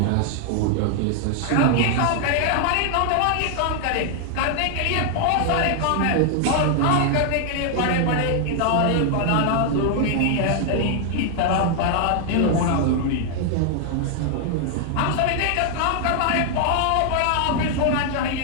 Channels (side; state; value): both; different; correlation 0.00